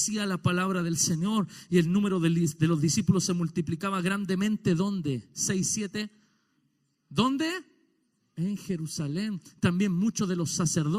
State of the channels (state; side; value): identical; both; correlation 1.00